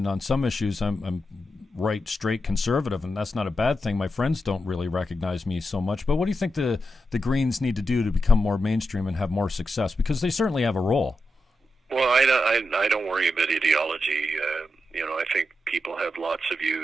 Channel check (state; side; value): normal; both; correlation 0.87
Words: on some issues, I'm right, straight conservative, and that's not a bad thing. My friends don't really recognize me so much. But what do you think the Greens need to do to become more mainstream and have more success? Because they certainly have a role. Well, I don't worry about ideology. I think people have lots of